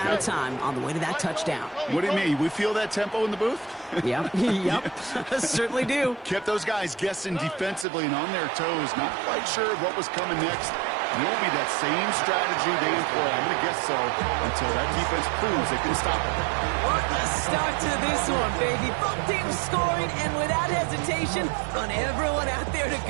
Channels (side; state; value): left; drops out; at 7.9 s